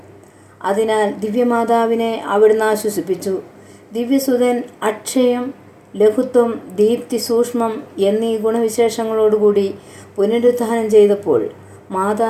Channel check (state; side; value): identical; both; correlation 1.00